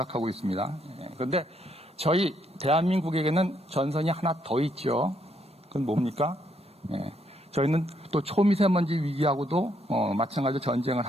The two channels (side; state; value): both; normal; correlation 0.73